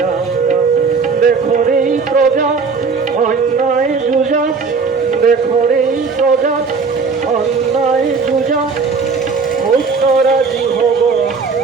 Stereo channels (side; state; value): left; quieter; 4.9 dB